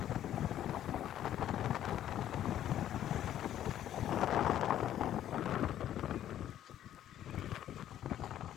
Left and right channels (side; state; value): right; quieter; 11.5 dB